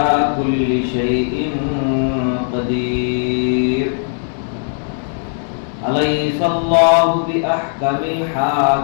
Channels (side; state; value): right; silent; digital silence